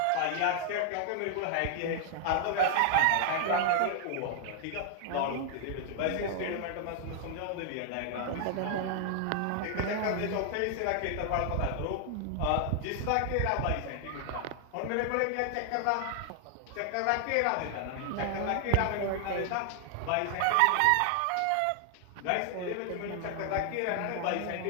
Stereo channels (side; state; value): both; different; correlation 0.00